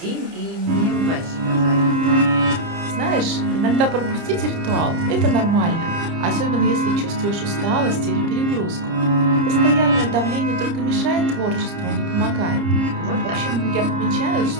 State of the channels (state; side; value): late; left; 30 ms